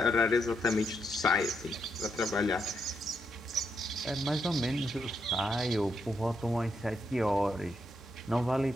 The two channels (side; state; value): both; normal; correlation 0.79